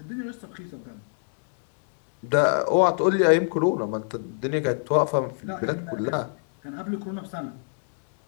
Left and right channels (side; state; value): right; silent; digital silence